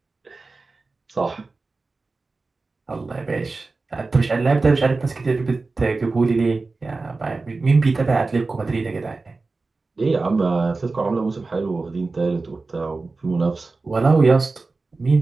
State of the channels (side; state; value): left; quieter; 3.7 dB